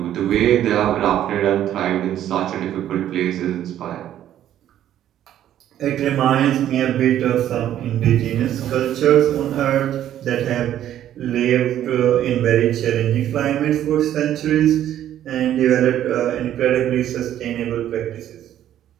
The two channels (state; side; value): quieter; left; 11.5 dB